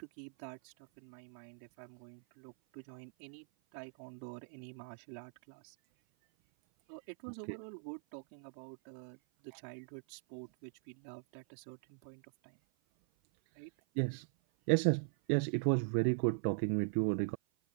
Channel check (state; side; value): silent; left; 51 dB below the other